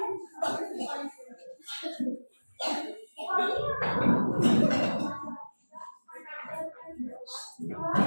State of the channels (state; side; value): inverted; both; correlation -1.00